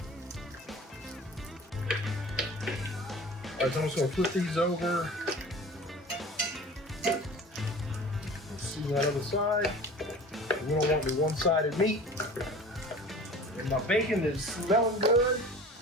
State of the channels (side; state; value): both; normal; correlation 0.41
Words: Alright, so I'm just gonna flip these over. Let's see that other side. We don't want the one-sided meat. And my bacon is smelling good,